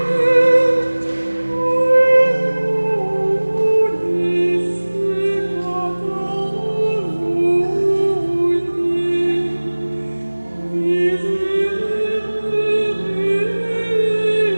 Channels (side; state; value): both; inverted; correlation -1.00